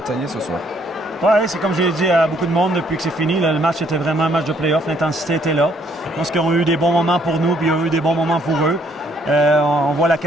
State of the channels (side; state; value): both; normal; correlation 0.66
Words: ce soir. Oui, c'est comme j'ai dit à beaucoup de monde depuis que c'est fini. Le match était vraiment un match de play-off. L'intensité était là. Je pense qu'ils ont eu des bons moments pour nous, puis ils ont eu des bons moments pour eux. On voit la